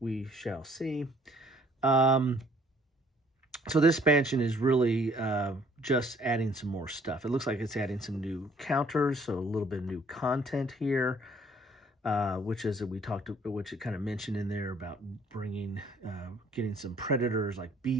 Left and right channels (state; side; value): normal; both; correlation 0.60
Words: shall see. So this expansion is really just adding some more stuff. It looks like it's adding some new counters, so a little bit of new content here, which it kind of mentioned in there about getting some predators like